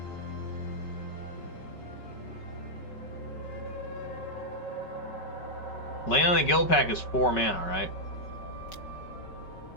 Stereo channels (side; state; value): right; late; 5.3 ms